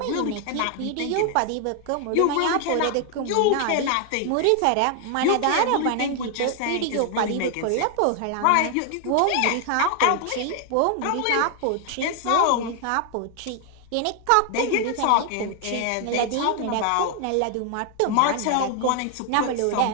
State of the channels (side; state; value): both; different; correlation 0.00